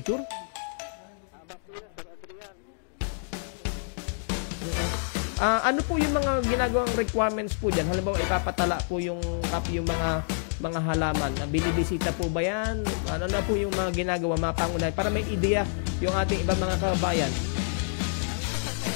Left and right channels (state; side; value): silent; right; digital silence